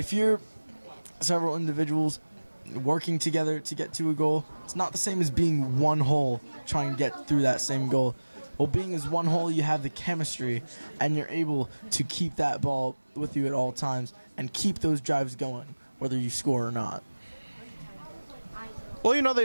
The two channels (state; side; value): inverted; both; correlation -1.00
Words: you're several individuals working together to get to a goal, it's not the same as being one whole trying to get through that same goal. Well, being as one whole, you have the chemistry, and you're able to keep that ball with you at all times and keep those drives going, whether you score or not. Well,